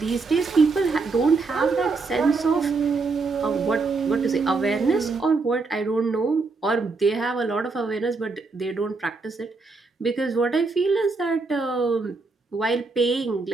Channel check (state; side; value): quieter; left; 4.0 dB